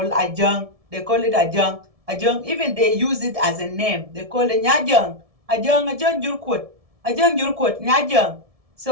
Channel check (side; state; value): left; late; 1.7 ms